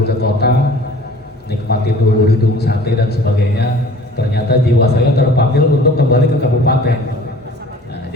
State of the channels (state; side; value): normal; both; correlation 0.48